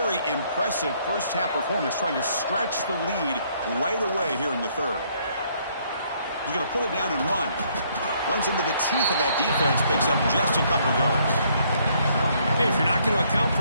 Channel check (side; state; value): both; inverted; correlation -0.67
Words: impressive first-half performance, trying to stretch the lead right away here in the third. He's going to pull it down and run. Runs into the teeth of that defense, picks up just a couple of yards. Hey, if you're not going to account